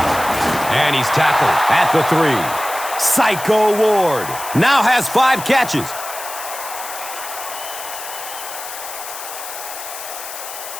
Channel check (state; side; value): noise; left; hiss, 10 dB below the sound